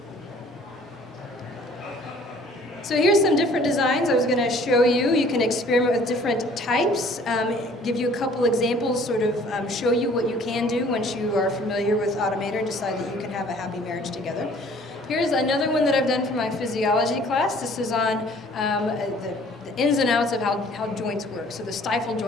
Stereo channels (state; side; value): normal; both; correlation 0.55